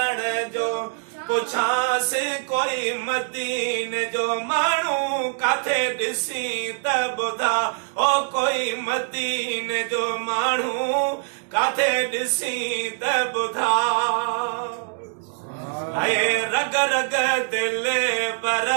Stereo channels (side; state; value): left; silent; digital silence